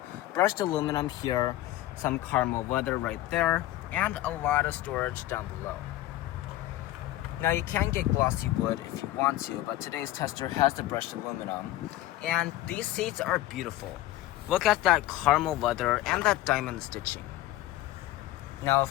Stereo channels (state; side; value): quieter; right; 15.4 dB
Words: brushed aluminum here, some caramel leather right there, and a lot of storage down below. Now you can get glossy wood if you want to, but today's tester has the brushed aluminum, and these seats are beautiful. Look at that caramel leather and that diamond stitching. Now